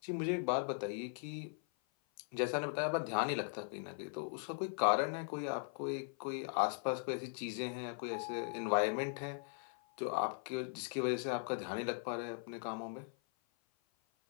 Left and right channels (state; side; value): silent; right; 52 dB below the other